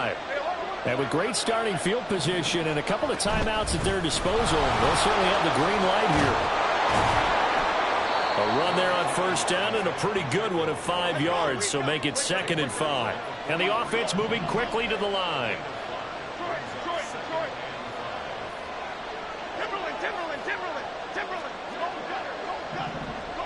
And with great starting field position and a couple of timeouts at their disposal, they'll certainly have the green light here. A run there on first down and a pretty good one of 5 yards, so make it 2nd and 5. And the offense moving quickly to the line.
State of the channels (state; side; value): identical; both; correlation 1.00